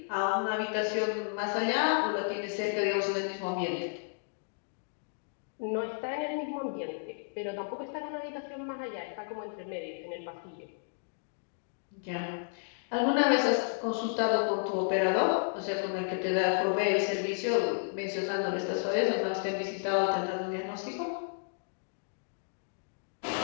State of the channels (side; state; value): right; silent; digital silence